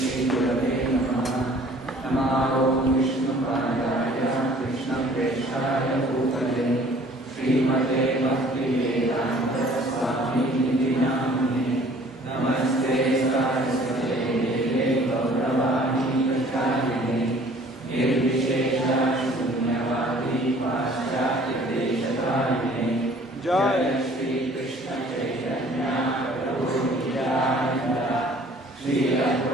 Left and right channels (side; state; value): both; normal; correlation 0.53